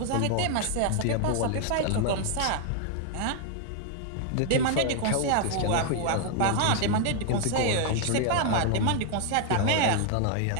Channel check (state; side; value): different; both; correlation 0.00